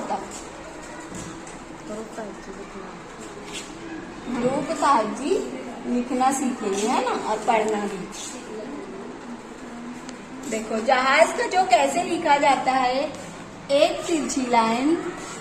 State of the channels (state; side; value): identical; both; correlation 1.00